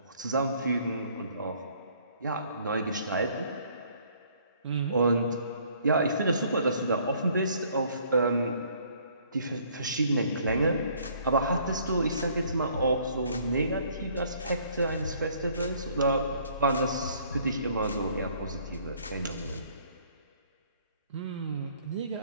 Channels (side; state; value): both; inverted; correlation -0.61